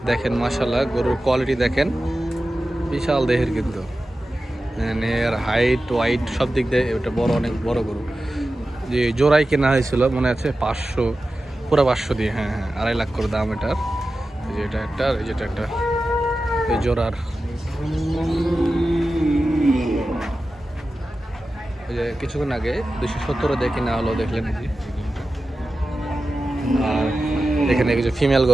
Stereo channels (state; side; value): normal; both; correlation 0.94